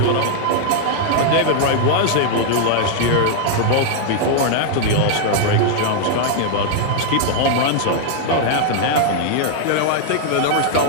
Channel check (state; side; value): different; both; correlation 0.00